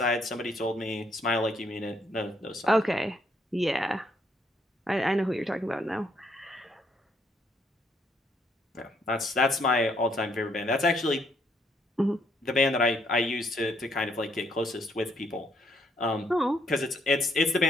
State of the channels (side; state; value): both; normal; correlation 0.71